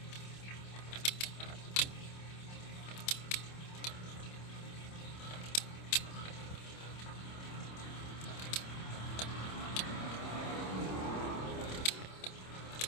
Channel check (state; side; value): late; right; 27 ms